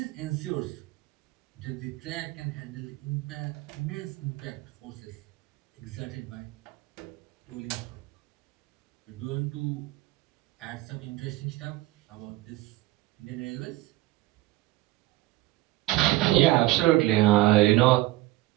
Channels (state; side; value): quieter; left; 18.2 dB